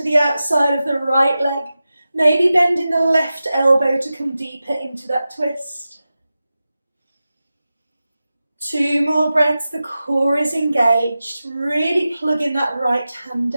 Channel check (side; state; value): both; inverted; correlation -0.94